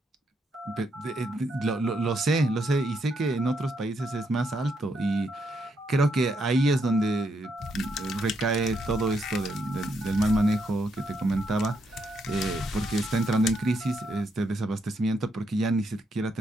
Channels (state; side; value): normal; both; correlation 0.77